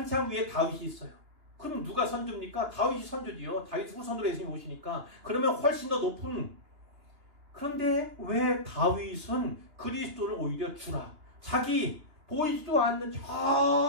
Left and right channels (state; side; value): late; left; 2.9 ms